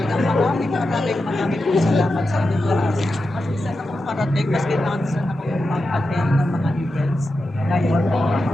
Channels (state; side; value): normal; both; correlation 0.90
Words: marami pong salamat sa inyo lahat. Kasi saan ako parating, kasi saan ako mag-attend ng mga events. Ngayon,